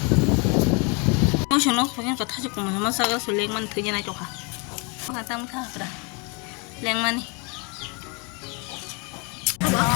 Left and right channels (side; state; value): right; quieter; 32.3 dB